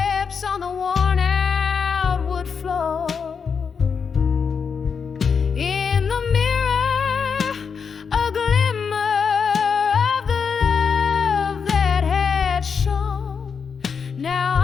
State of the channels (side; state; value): right; quieter; 6.1 dB